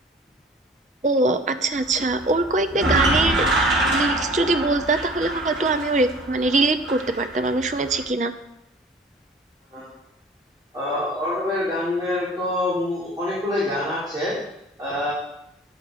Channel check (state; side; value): normal; both; correlation 0.46